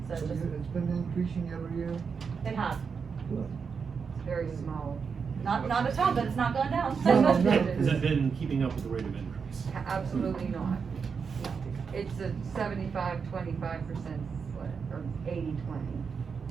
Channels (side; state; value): left; quieter; 5.8 dB